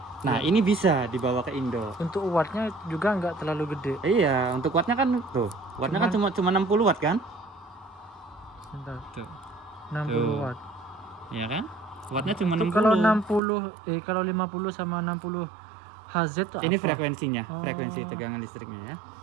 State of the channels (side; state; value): left; drops out; at 13.4 s